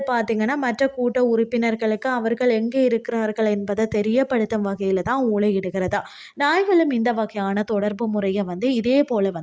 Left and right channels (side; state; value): both; identical; correlation 1.00